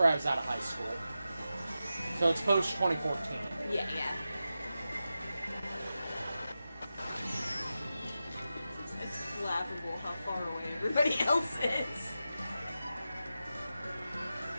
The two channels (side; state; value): both; inverted; correlation -0.91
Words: I was out of high school. So it's post 2014. Yeah. It's laughable how far away everybody else is.